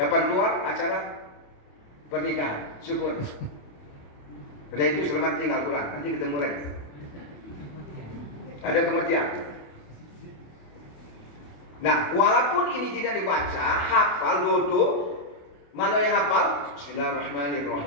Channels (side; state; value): right; late; 28 ms